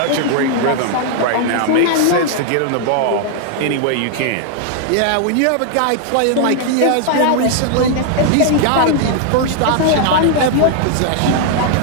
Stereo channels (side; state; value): both; different; correlation -0.01